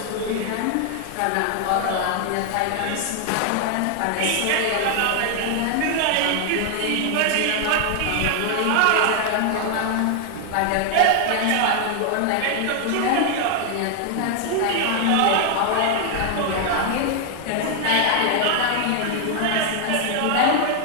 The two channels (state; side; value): different; both; correlation 0.00